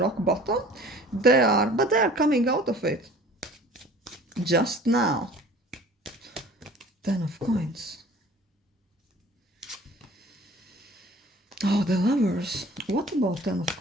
bottom. But they are coming out of it. Just now. 10 of Coins. Oh, the Lovers. What about 10 of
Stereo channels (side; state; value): both; normal; correlation 0.48